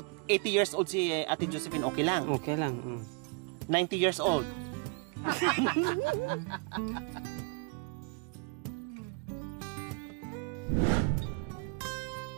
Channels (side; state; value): left; quieter; 34.6 dB